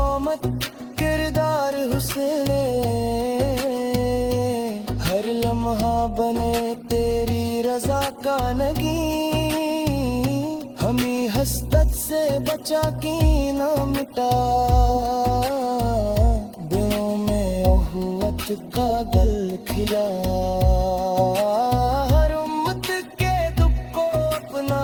किरदार हुस्न, हर लम्हा बने तेरी रजा का नगी। हमें हसरत से बचा की ना मिटा, दिलों में उहुवत का गल खिला। हर उम्मत के दुख को अपना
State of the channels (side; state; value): both; identical; correlation 1.00